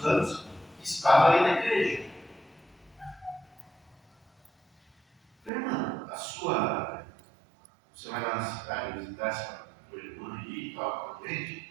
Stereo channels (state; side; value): drops out; left; at 5.5 s